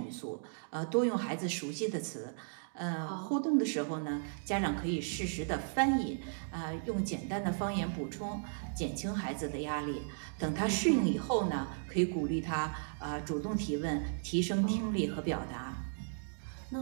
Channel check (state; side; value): silent; left; digital silence